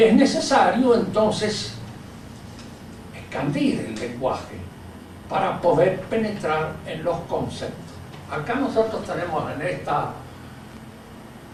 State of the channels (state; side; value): identical; both; correlation 1.00